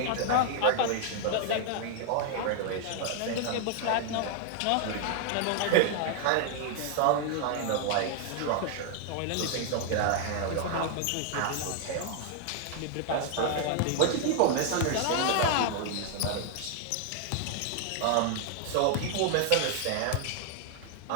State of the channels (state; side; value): different; both; correlation 0.00